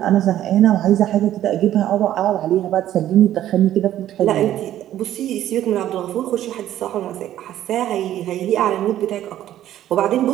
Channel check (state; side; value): quieter; left; 12.4 dB